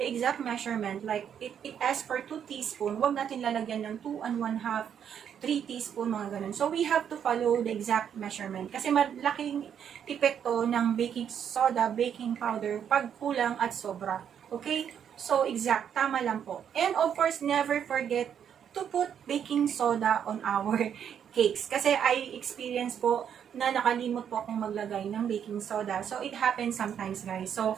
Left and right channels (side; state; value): left; quieter; 8.5 dB